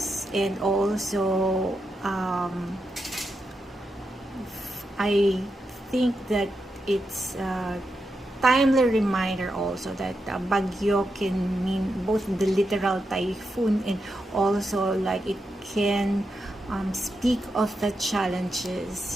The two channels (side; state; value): both; normal; correlation 0.86